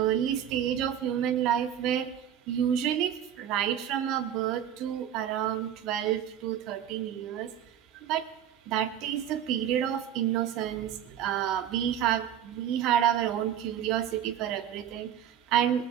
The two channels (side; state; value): left; quieter; 10.0 dB